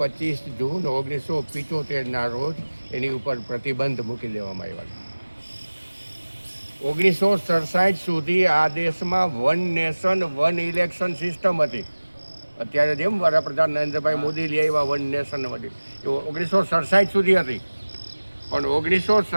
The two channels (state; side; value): inverted; both; correlation -1.00